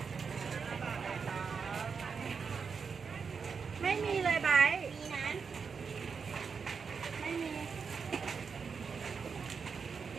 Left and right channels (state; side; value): quieter; left; 5.7 dB